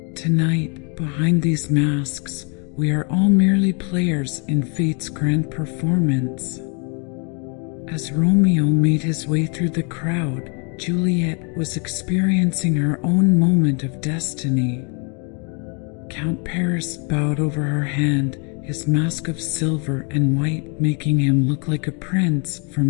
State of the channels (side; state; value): right; quieter; 35.9 dB